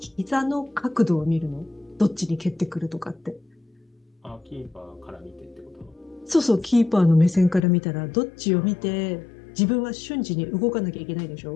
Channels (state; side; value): drops out; right; at 7.7 s